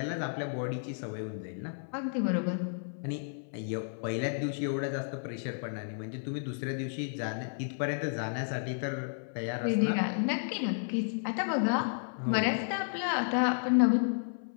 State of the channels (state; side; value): silent; right; 56 dB below the other